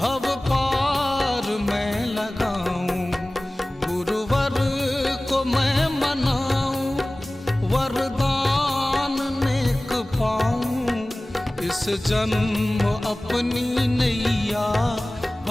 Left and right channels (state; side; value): normal; both; correlation 0.98